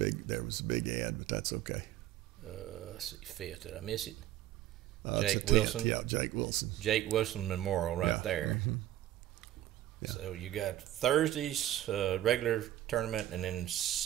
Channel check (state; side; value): quieter; left; 13.5 dB